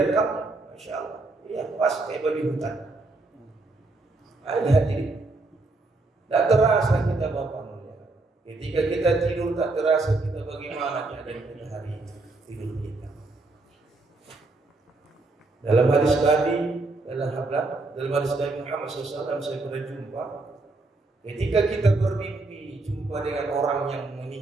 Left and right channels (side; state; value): left; quieter; 3.2 dB